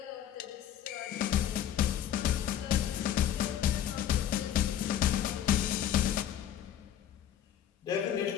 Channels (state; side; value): quieter; right; 10.6 dB